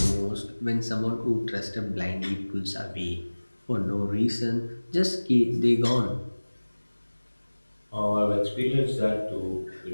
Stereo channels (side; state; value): both; inverted; correlation -1.00